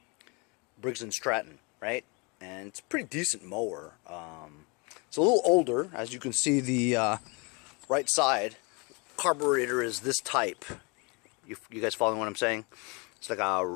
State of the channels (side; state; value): right; quieter; 30.2 dB